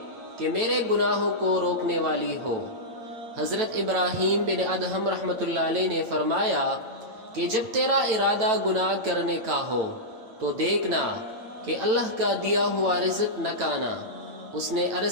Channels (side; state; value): left; late; 8.8 ms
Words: کہ میرے گناہوں کو روکنے والی ہو۔ حضرت ابراہیم بن ادہم رحمۃ اللہ علیہ نے فرمایا کہ جب تیرا ارادہ گناہ کرنے کا ہو تو دیکھنا کہ اللہ کا دیا ہوا رزق نہ کھانا۔ اس نے